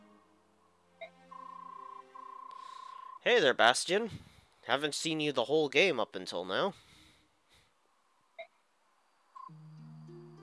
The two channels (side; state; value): both; identical; correlation 1.00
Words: Hey there, Bastion. Haven't seen you the whole game up until now.